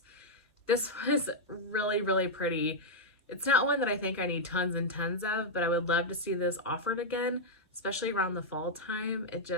This was really, really pretty. It's not one that I think I need tons and tons of, but I would love to see this offered again, especially around the fall time. It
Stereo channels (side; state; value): both; normal; correlation -0.03